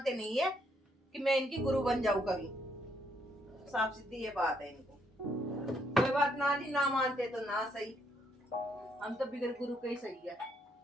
नहीं है कि मैं इनकी गुरु बन जाऊं कभी। साफ सीधी ये बात है इनको। कोई बात ना जी, ना मानते तो ना सही, हम तो बिगड़ गुरु के ही सही है।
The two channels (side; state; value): both; normal; correlation 0.73